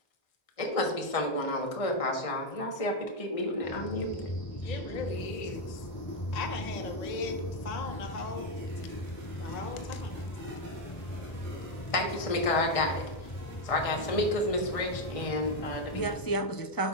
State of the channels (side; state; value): right; late; 1.6 ms